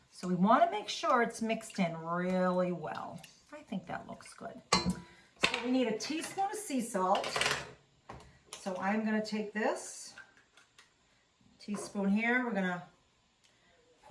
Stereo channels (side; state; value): both; identical; correlation 1.00